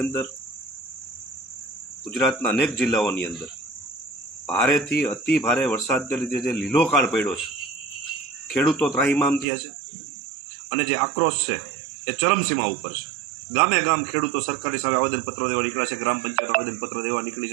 અંદર ગુજરાતના અનેક જિલ્લાઓની અંદર ભારેથી અતિ ભારે વરસાદને લીધે જે લીલોકાળ પડ્યો છે, ખેડૂતો ત્રાહિમામ થયા છે અને જે આક્રોશ છે એ ચરમસીમા ઉપર છે. ગામે ગામ ખેડૂતો સરકારની સામે આવેદનપત્રો દેવા નીકળ્યા છે, ગ્રામ પંચાયત આવેદનપત્ર દેવા નીકળી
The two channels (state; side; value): drops out; left; at 9.5 s